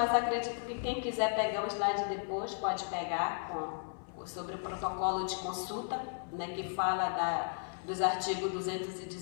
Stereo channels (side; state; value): right; silent; 54 dB below the other